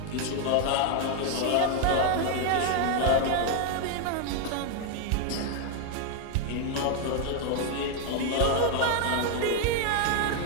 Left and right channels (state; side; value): different; both; correlation 0.00